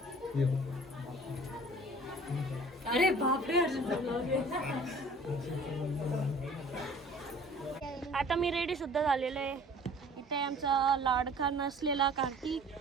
अरे बापरे. आता मी रेडी सुद्धा झालेलो आहे. इथे आमचा लाडका नसलेला कार्तिक,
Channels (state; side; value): normal; both; correlation 0.48